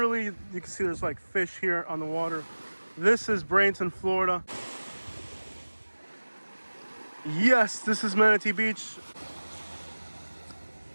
you can see there's like fish here on the water. This is Bradenton, Florida. Yes, this is Manatee Beach.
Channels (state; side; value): inverted; both; correlation -1.00